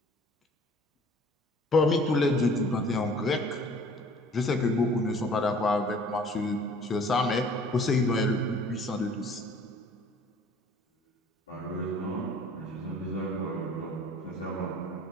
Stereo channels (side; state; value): both; normal; correlation 0.52